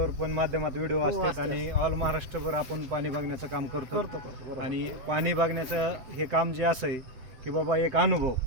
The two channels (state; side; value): late; left; 7.8 ms